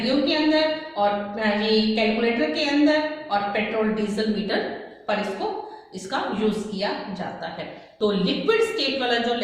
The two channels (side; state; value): both; identical; correlation 1.00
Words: के अंदर और ये कैलकुलेटर के अंदर और पेट्रोल डीजल मीटर पर इसका यूज किया जाता है। तो लिक्विड स्टेट वाला जो